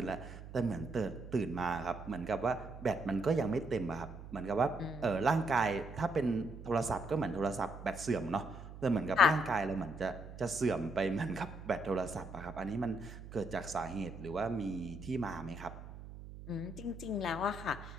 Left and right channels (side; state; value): right; noise; hum, 13 dB below the sound